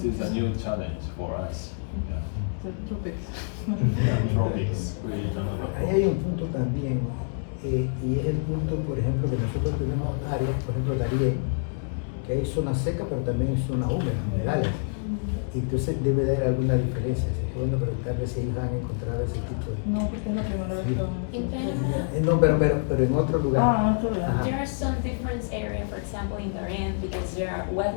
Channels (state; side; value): silent; right; digital silence